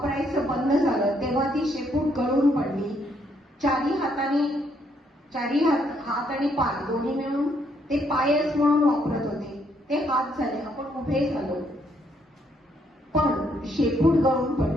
बंद झालं तेव्हा ती शेपूट गळून पडली. चारी हात आणि पाय दोन्ही मिळून ते पायच म्हणून वापरत होते, ते हात झाले, आपण उभे झालो. पण शेपूट गळून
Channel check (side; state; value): both; normal; correlation 0.72